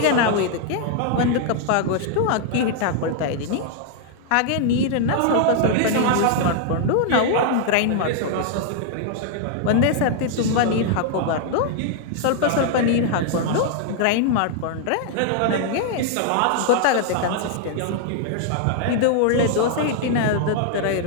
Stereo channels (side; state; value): both; different; correlation 0.00